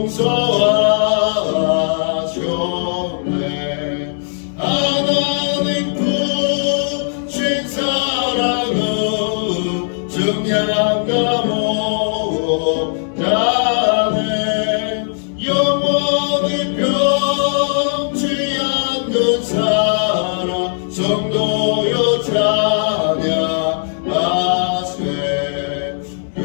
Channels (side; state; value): right; silent; digital silence